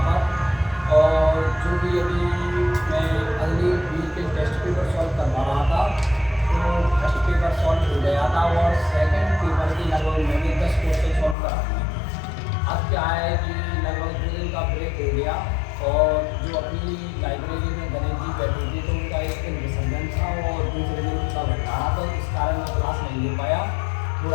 पर। और जो भी अभी मैं अगली वीक के टेस्ट पेपर सॉल्व करवा रहा था, तो फर्स्ट पेपर सॉल्व हो गया था और सेकंड पेपर की लगभग मैंने 10 क्वेश्चन सॉल्व करा दिए। अब क्या है कि लगभग 2 दिन का ब्रेक हो गया और जो अपनी लाइब्रेरी में गणेश जी बैठे थे तो उनका एक दिन विसर्जन था और दूसरे दिन उनका भंडारा था, इस कारण मैं क्लास नहीं ले पाया,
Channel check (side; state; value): right; drops out; at 11.4 s